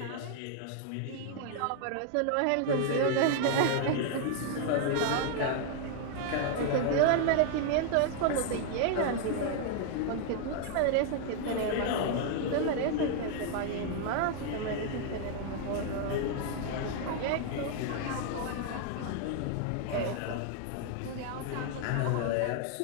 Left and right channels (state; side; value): different; both; correlation 0.00